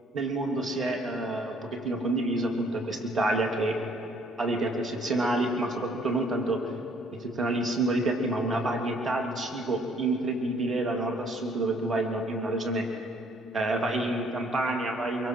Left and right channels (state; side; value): normal; both; correlation 0.62